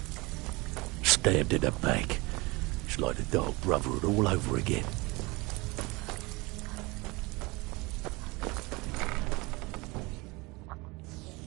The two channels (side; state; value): left; quieter; 24.4 dB